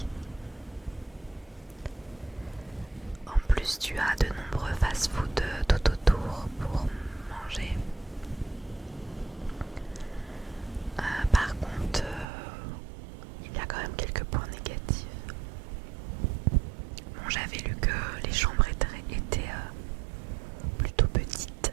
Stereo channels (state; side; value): drops out; left; at 12.2 s